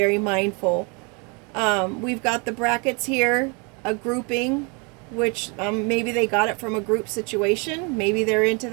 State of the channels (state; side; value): quieter; left; 32.5 dB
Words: mindful. We've got the brackets here, a grouping, which maybe they got it from a group situation. Maybe they're into